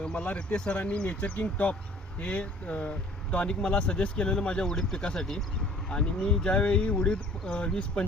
मला रितेश सरांनी नेचर किंग टॉप हे टॉनिक मला सजेस्ट केलेलं माझ्या उडीद पिकासाठी. आणि मी ज्यावेळी उडीद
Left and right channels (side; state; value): both; normal; correlation 0.52